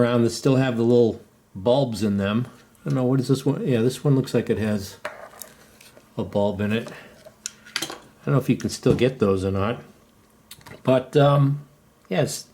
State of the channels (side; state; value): both; identical; correlation 1.00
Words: that still have the little bulbs in them. I don't know, what is this one? Yeah, this one looks like it has a bulb in it. I don't know if you can still get those or not. But yeah, it's